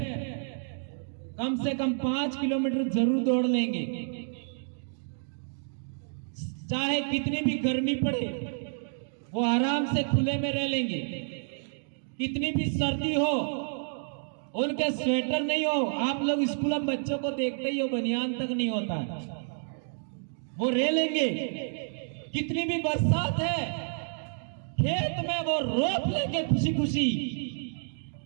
कम से कम 5 किलोमीटर जरूर दौड़ लेंगे, चाहे कितनी भी गर्मी पड़े वो आराम से खुले में रह लेंगे, कितनी भी सर्दी हो उनके स्वेटर नहीं हो। आप लोग स्कूल में बच्चों को देखते ही हो, बनियान तक नहीं होता है, वो रह लेंगे। कितनी भी बरसात है, खेत में वो रोप लेंगे खुशी खुशी।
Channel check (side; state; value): left; silent; digital silence